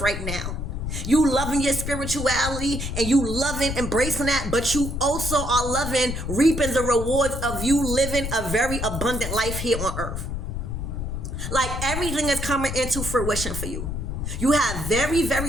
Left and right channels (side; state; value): left; noise; rumble, 4 dB below the sound